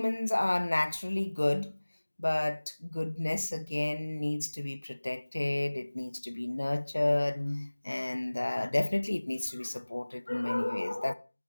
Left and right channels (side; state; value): both; inverted; correlation -1.00